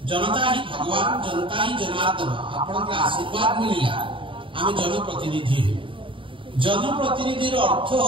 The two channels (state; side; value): late; left; 0.25 ms